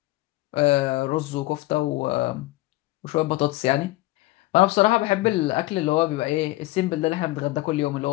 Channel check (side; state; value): right; quieter; 18.7 dB